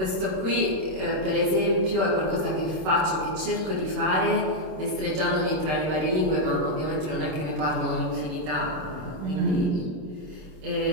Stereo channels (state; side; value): late; left; 26 ms